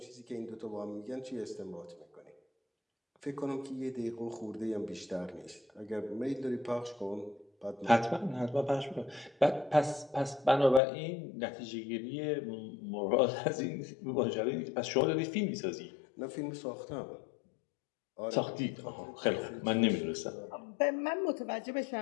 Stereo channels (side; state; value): right; drops out; at 10.8 s